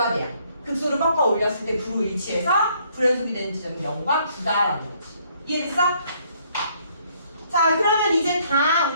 돼야. 극소를 꺾어 올렸을 때 9로 일치해서 불연속이 되는 지점이 0과 9다라는 거지. 이해됐어? 자, 그러면 이제 다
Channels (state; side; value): inverted; both; correlation -0.66